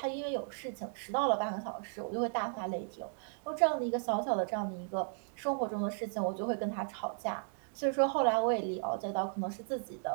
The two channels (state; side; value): silent; left; digital silence